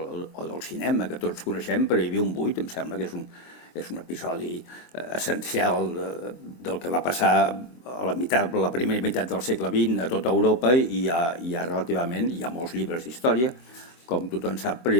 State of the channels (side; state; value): right; late; 23 ms